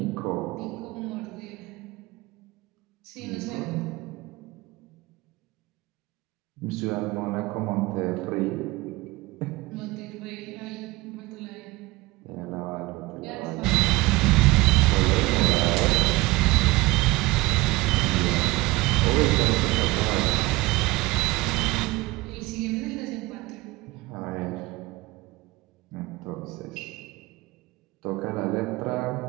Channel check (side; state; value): left; quieter; 21.1 dB